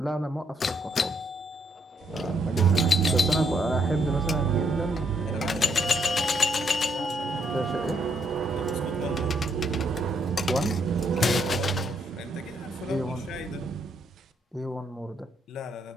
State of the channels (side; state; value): both; normal; correlation 0.73